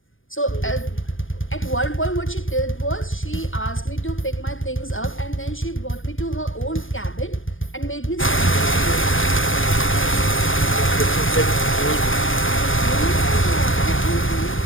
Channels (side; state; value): right; late; 0.58 ms